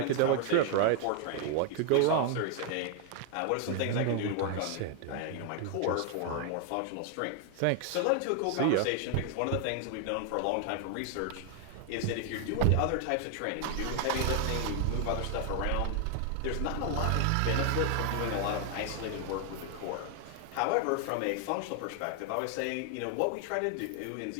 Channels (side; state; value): both; different; correlation 0.00